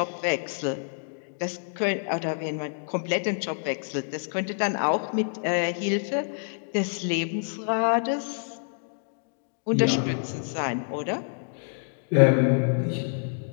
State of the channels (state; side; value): silent; right; digital silence